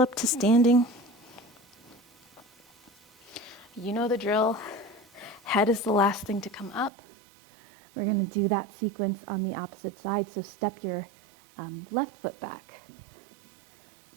to standing. You know the drill. Head is the last thing to come up. We're gonna do that sequence on the opposite side, so step your left foot back.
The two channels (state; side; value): drops out; left; at 6.9 s